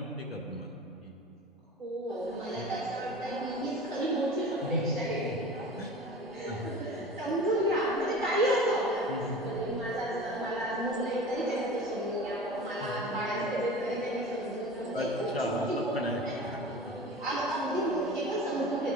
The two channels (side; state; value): both; normal; correlation 0.37